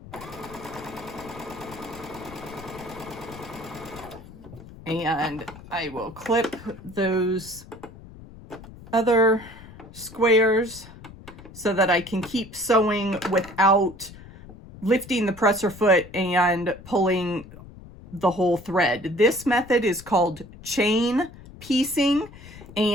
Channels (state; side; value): noise; left; rumble, 18 dB below the sound